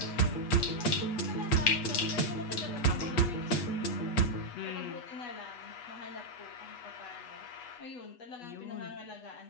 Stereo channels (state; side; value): late; right; 8.2 ms